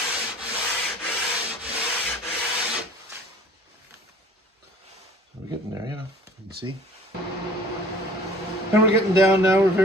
We're getting there, you know, you can see. And we're getting down now, we're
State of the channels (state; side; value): normal; both; correlation 0.50